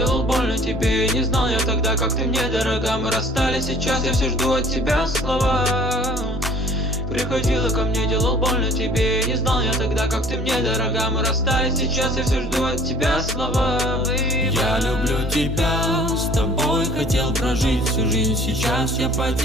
больно тебе. Не знал я тогда, как ты мне дорога. Мы расстались, сейчас я все жду от тебя слова. Приходила ко мне, делал больно тебе. Не знал я тогда, как ты мне дорога. Мы расстались, сейчас я все жду от тебя слова. Я люблю тебя, с тобой хотел прожить всю жизнь. Сейчас я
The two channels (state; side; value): normal; both; correlation 0.52